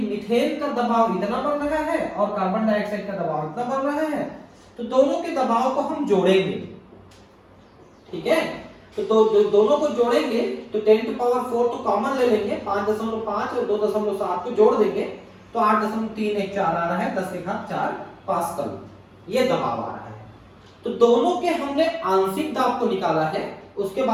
मीथेन का दबाव इतना बढ़ रहा है और कार्बन डाइऑक्साइड का दबाव इतना बढ़ रहा है, तो दोनों के दबाव को हम जोड़ेंगे, ठीक है। तो दोनों को जोड़ेंगे तो 10⁴ तो कॉमन ले लेंगे, 5.5 और 2.7 को जोड़ देंगे तो 8.314 आ रहा है, 10⁴ पास्कल ये दबाव आ रहा है। तो दोनों के हमने आंशिक दाब को निकाला है, उसके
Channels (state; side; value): identical; both; correlation 1.00